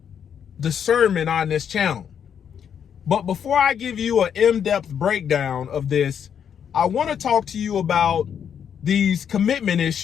discernment on this channel. But before I give you an in-depth breakdown of this, I want to talk to you about these commitment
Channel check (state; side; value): quieter; right; 8.2 dB